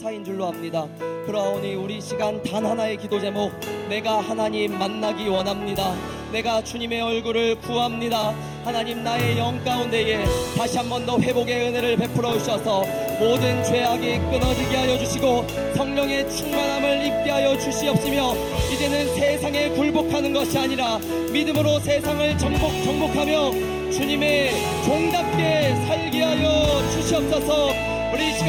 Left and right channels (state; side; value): identical; both; correlation 1.00